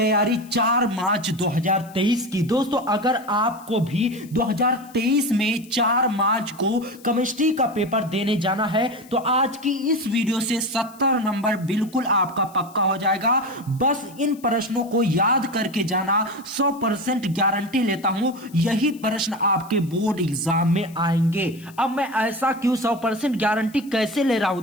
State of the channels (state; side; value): noise; left; hiss, 24 dB below the sound